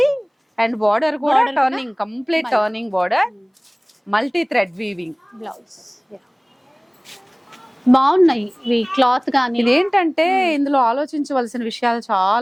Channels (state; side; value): identical; both; correlation 1.00